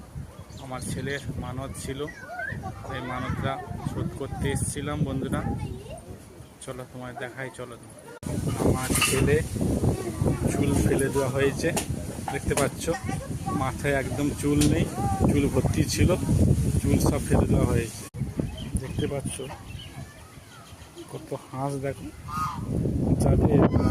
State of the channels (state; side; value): identical; both; correlation 1.00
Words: আমার ছেলের মানত ছিল, এই মানতটা শোধ করতে এসেছিলাম। বন্ধুরা চলো তোমায় দেখাই, চলো। আমার ছেলে চুল ফেলে দেওয়া হয়েছে, দেখতে পাচ্ছ। মাথায় একদম চুল নেই, চুল ভর্তি ছিল, চুল সব ফেলে দেওয়া হয়েছে। দেখতে পাচ্ছ কত হাঁস, দেখো। যাদের